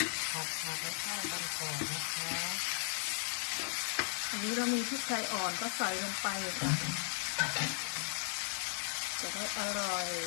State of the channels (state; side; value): silent; right; 54 dB below the other